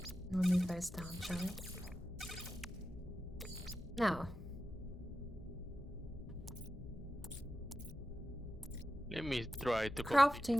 We'll move those down, shall we? Now, let me try to complete this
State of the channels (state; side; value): noise; left; hum, 14 dB below the sound